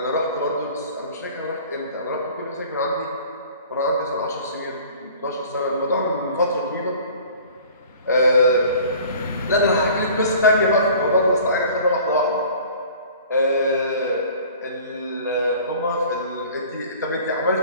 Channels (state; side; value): inverted; both; correlation -0.47